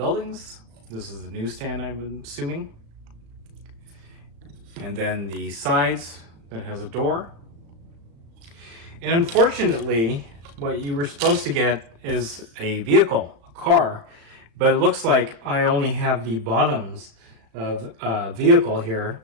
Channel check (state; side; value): late; left; 35 ms